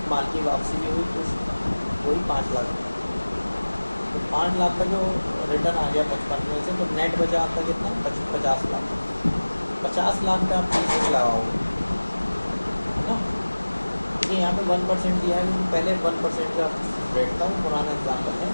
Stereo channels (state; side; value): inverted; both; correlation -1.00